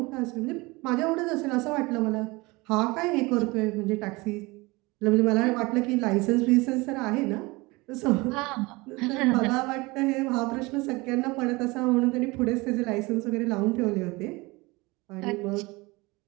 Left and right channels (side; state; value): left; quieter; 23.6 dB